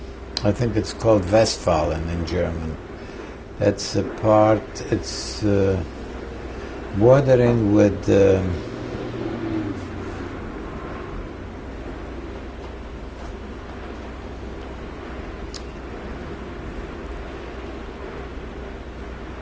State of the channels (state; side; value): identical; both; correlation 1.00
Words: I think it's called Westfalen in German. That's a part, it's bordering with